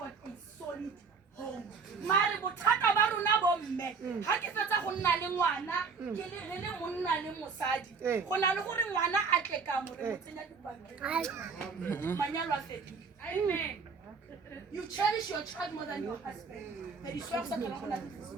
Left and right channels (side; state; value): left; quieter; 5.2 dB